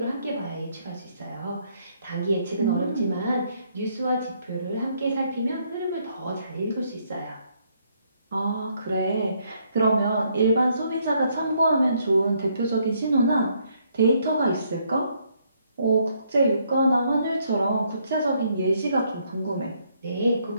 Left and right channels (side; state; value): both; inverted; correlation -0.71